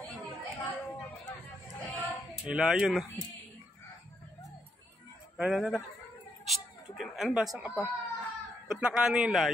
May layon. Tara. Shhh! Ano ba? Saan ka pa? Ba't nakano yung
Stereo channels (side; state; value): both; normal; correlation 0.78